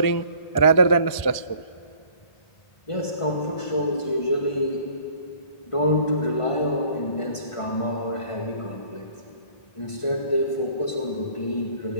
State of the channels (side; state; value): right; late; 1.0 ms